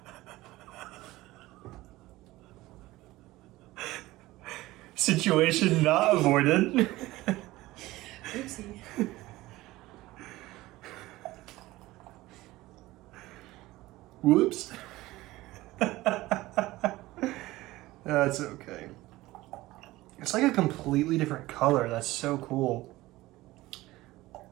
Situation not avoided. Oopsie. Whoops. That's okay. It's like a completely different color. That's so cool.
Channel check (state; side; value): quieter; left; 18.2 dB